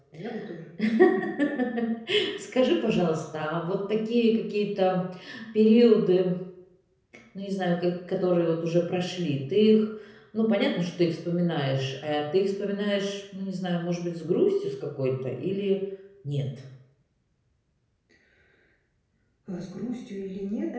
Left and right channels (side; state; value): both; identical; correlation 1.00